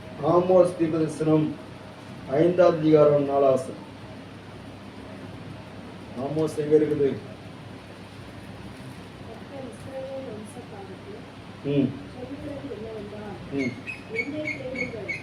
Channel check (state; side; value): identical; both; correlation 1.00